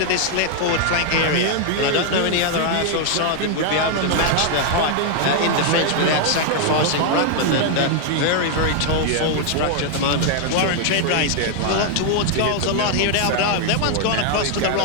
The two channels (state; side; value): different; both; correlation 0.00